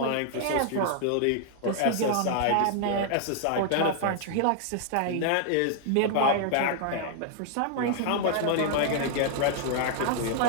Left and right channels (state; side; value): different; both; correlation 0.00